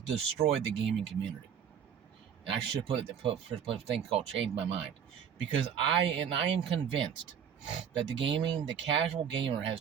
destroyed the gaming community. And I should put a thing called change my mind, because I am convinced that the casual gamer has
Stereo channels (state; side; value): quieter; left; 8.1 dB